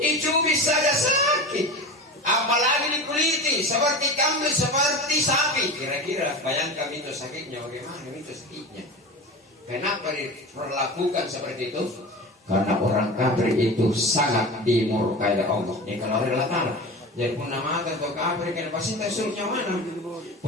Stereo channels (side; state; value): both; normal; correlation 0.30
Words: Dicubit saja sakit. Apalagi dikuliti seperti kambing seperti sapi. Kira-kira bayangkan itu sakitnya bagaimana itu sakitnya. Kenapa diperlakukan seperti itu? Karena orang kafir itu sangat dimurkai oleh Allah. Ini kalau relatan. Jadi pun nama atau kafir kan pasti surnya mana?